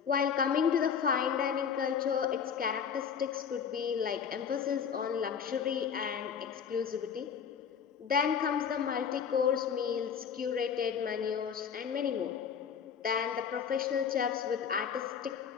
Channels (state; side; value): quieter; right; 7.2 dB